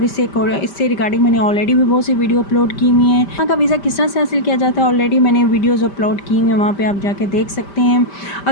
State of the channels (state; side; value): late; right; 5.1 ms